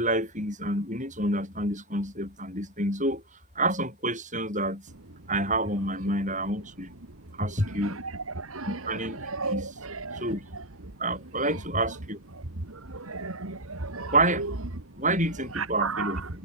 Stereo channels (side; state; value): both; normal; correlation 0.07